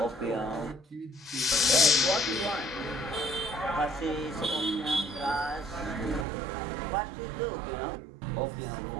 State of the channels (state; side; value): drops out; left; at 6.2 s